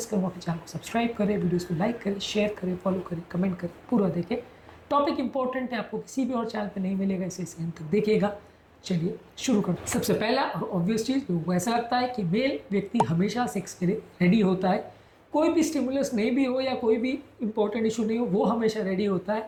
करूँगा कि चैनल को सब्सक्राइब करें, वीडियोज़ को लाइक करें, शेयर करें, फॉलो करें, कमेंट करें, पूरा देखें। टॉपिक इंपॉर्टेंट है, आपको किसी भी और चैनल पर नहीं मिलेगा, इसे अंत तक देखिएगा। चलिए शुरू करते हैं। सबसे पहला और ऑब्वियस चीज़, लोगों को ऐसा लगता है कि मेल व्यक्ति हमेशा सेक्स के लिए रेडी होता है, कोई भी स्टिमुलस नहीं भी हो या कोई भी इंपॉर्टेंट इशू नहीं हो, वो हमेशा रेडी होता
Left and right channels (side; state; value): both; identical; correlation 1.00